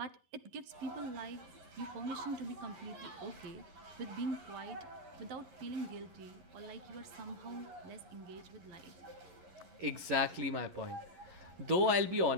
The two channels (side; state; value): left; late; 11 ms